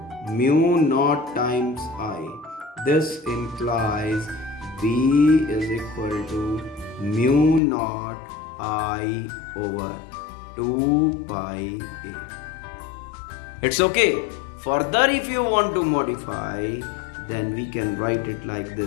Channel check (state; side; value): drops out; right; at 7.6 s